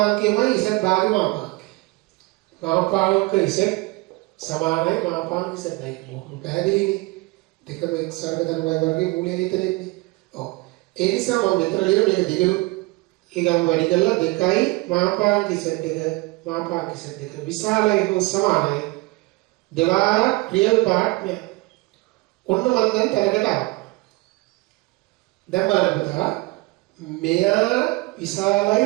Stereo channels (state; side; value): quieter; left; 23.3 dB